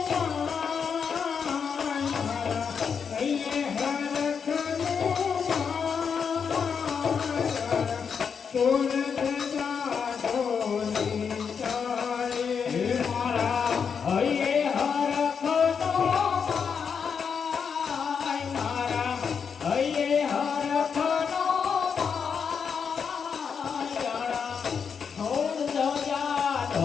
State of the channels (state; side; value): quieter; right; 6.5 dB